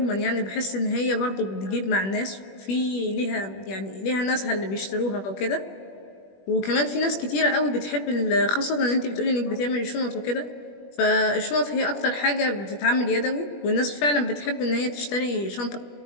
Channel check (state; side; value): late; right; 21 ms